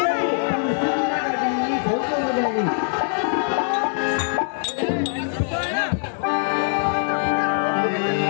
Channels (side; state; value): right; silent; digital silence